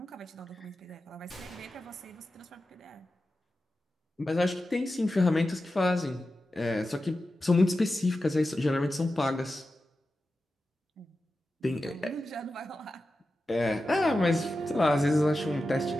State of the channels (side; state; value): both; normal; correlation 0.92